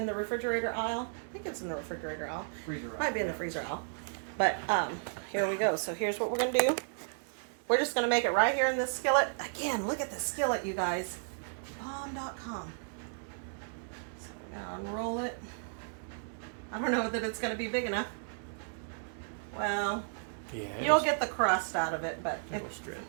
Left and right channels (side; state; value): left; silent; digital silence